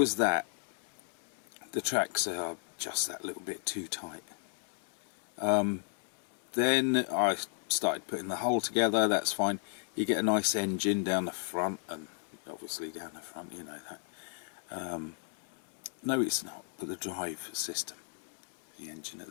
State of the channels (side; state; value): right; silent; 55 dB below the other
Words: that. The tracks are just that little bit too tight. Then I started putting the hull together. That's fine. You get a nice engine down the front, and obviously down the front, you know that. No, it's not, but the drive system, the engine at